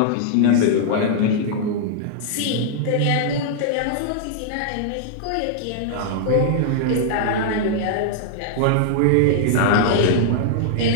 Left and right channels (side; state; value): both; different; correlation -0.01